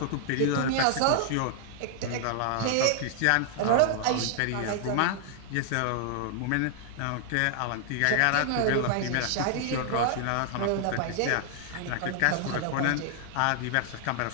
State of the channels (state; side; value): different; both; correlation 0.00